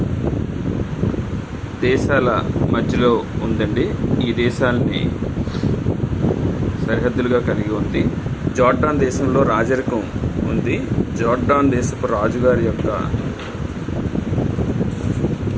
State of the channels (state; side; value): identical; both; correlation 1.00